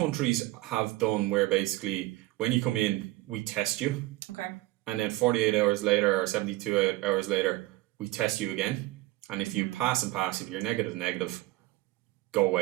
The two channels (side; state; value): left; quieter; 18.4 dB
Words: have done where basically when you come in, we test you, Okay. and then 48 hours later or 72 hours later, we test you again. And if you pass, if you're negative, go